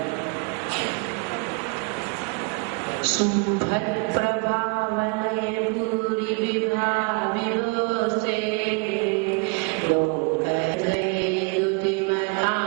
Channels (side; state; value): left; quieter; 33.9 dB